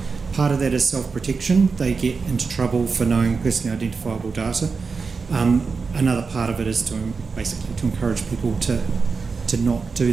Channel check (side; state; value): left; quieter; 4.8 dB